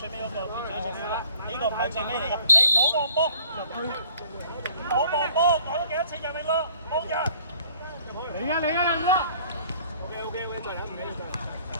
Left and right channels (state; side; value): inverted; both; correlation -0.56